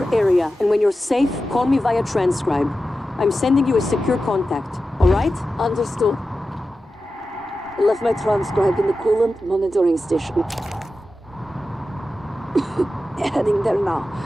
area, and when you're safe, call me via transcribe. I'm sending you a secure contact, all right? Understood. I left my transcribe in the coolant monitoring station. Heading there now.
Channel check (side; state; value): both; normal; correlation 0.92